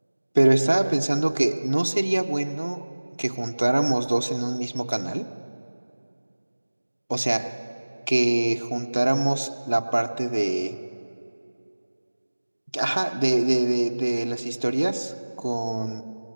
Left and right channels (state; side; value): inverted; both; correlation -1.00